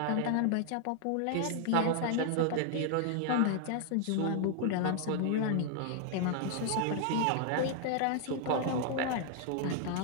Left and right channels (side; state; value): both; different; correlation 0.00